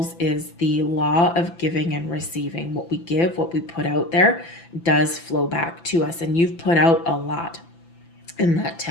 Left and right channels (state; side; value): late; right; 5.9 ms